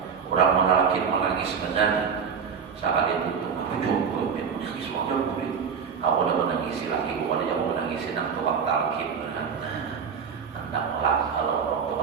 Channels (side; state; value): left; quieter; 6.5 dB